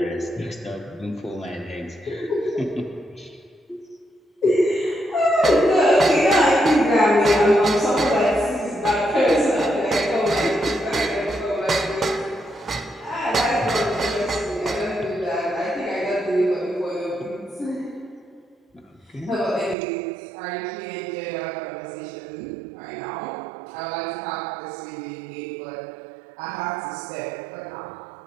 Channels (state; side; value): drops out; left; at 19.8 s